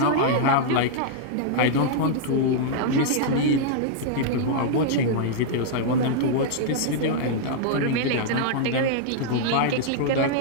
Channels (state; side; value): different; both; correlation -0.01